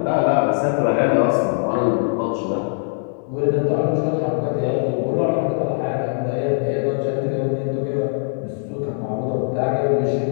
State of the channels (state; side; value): silent; right; digital silence